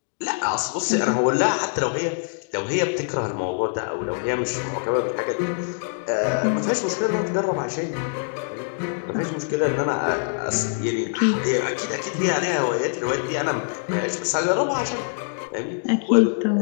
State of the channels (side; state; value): right; silent; digital silence